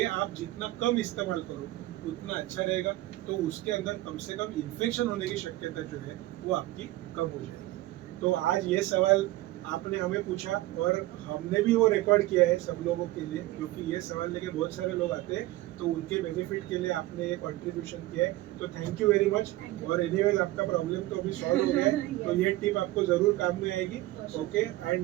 आप जितना कम इस्तेमाल करो उतना अच्छा रहेगा। तो उसके अंदर कम से कम इन्फेक्शन होने की शक्यता जो है वो आपकी कम हो जाएगी। तो आज ये सवाल आपने हमें पूछा और हमने भी वो रिकॉर्ड किया है सब लोगों के लिए क्योंकि ये सवाल लेके बहुत सारे लोग आते हैं तो उनके बेनिफिट के लिए आपने ये कंट्रीब्यूशन किया है तो थैंक यू वेरी मच। और एनीवेज आपका प्रॉब्लम तो अभी सॉल्व हो गया है तो ये टिप आपको जरूर काम में आएगी। Okay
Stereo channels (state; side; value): quieter; left; 17.4 dB